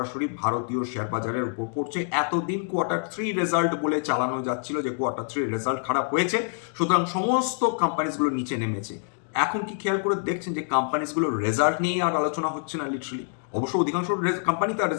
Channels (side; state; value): right; silent; digital silence